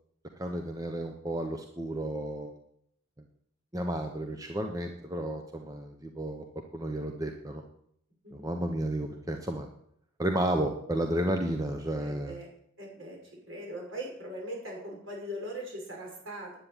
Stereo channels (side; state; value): both; normal; correlation 0.66